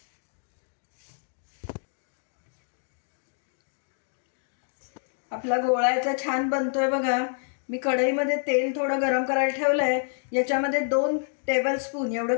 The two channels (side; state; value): right; silent; digital silence